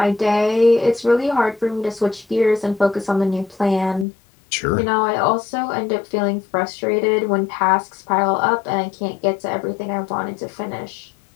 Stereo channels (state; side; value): drops out; right; at 4.0 s